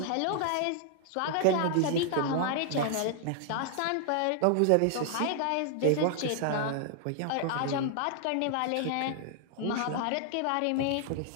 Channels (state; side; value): different; both; correlation 0.00